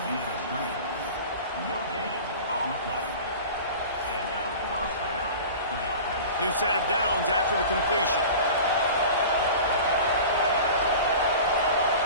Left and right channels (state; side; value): inverted; both; correlation -0.37